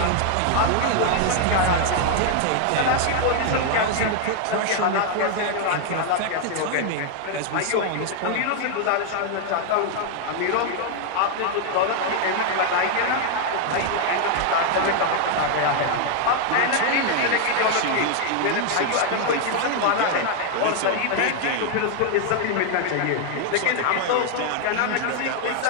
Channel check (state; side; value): different; both; correlation 0.00